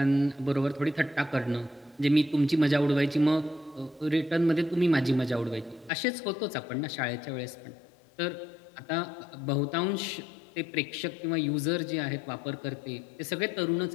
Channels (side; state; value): right; drops out; at 5.9 s